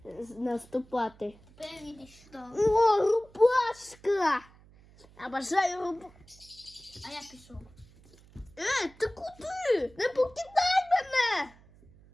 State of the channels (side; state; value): right; noise; hum, 25 dB below the sound